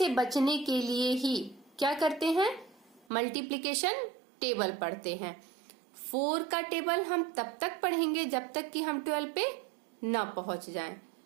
बचने के लिए ही क्या करते हैं? मल्टीप्लिकेशन टेबल पढ़ते हैं। 4 का टेबल हम तब तक पढ़ेंगे जब तक कि हम 12 पे ना पहुंच जाएं।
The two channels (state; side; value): drops out; left; at 3.1 s